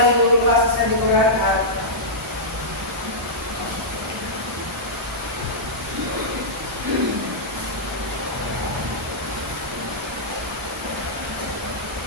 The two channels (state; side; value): normal; both; correlation -0.13